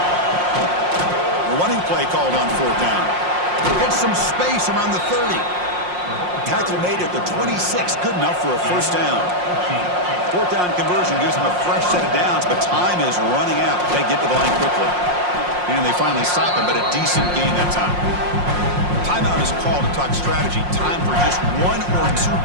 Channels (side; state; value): left; late; 5.6 ms